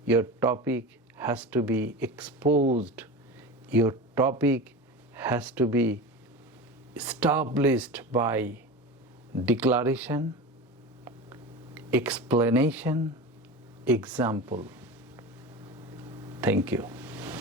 your topic has to be exposed, your topic has to be established by declaration, explanation, example. Thank you.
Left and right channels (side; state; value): both; normal; correlation 0.28